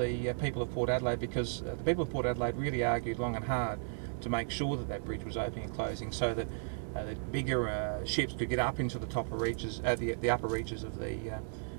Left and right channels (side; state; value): left; silent; digital silence